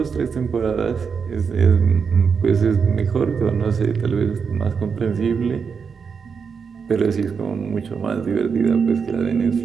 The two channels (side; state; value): left; quieter; 6.0 dB